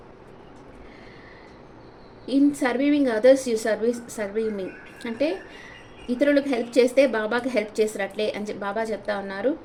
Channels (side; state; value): both; identical; correlation 1.00